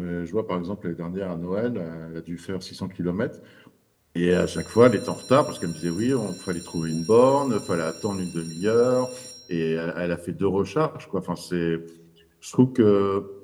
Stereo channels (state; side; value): identical; both; correlation 1.00